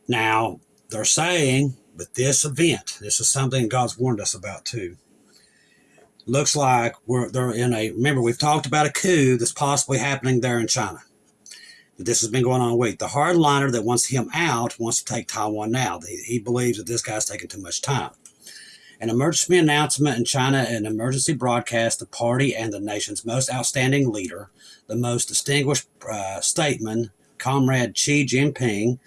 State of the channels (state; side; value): identical; both; correlation 1.00